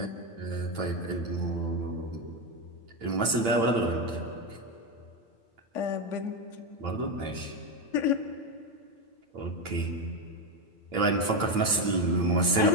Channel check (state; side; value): late; left; 8.9 ms